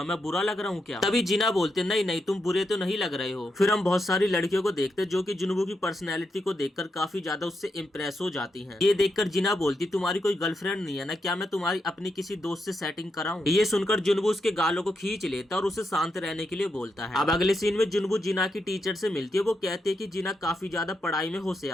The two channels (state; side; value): normal; both; correlation 0.83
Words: मैं बुरा लग रहा हूँ क्या? तभी जिना बोलते, नहीं नहीं, तुम बुरे तो नहीं लग रहे हो। फिर हम बहुत सारी लड़कियों को देखते जो कि जुनबू की पर्सनैलिटी को देखकर काफी ज्यादा उससे इम्प्रेस हो जाती हैं। ये देखकर जिना बोलती, तुम्हारी कोई गर्लफ्रेंड नहीं है ना? क्या मैं तुम्हारी अपनी किसी दोस्त से सेटिंग कराऊं? ये सुनकर जुनबू उसके गालों को खींच लेता और उसे शांत रहने के लिए बोलता है। अब अगले सीन में जुनबू जिना की टीचर से मिलती है। वो कहते हैं कि जिना काफी ज्यादा पढ़ाई में